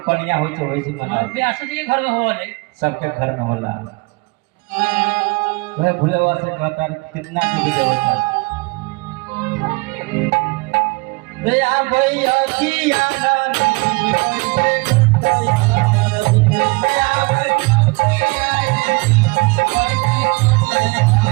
कन्या होई तो होई से मना व्यास जी के घर में होला सबके घर में होला। वह भुलवा से कहता कितना की देवता भैया भैया की आनंद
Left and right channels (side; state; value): left; quieter; 26.7 dB